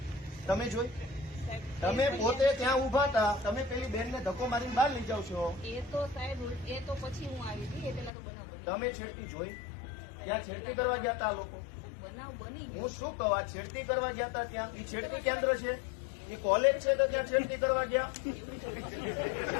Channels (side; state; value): right; drops out; at 8.1 s